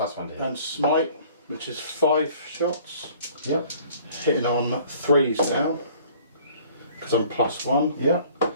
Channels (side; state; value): both; inverted; correlation -0.54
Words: to hit. And smite, which is 5 shots, Yeah. hitting on 3s now, because I'm +1. Yeah.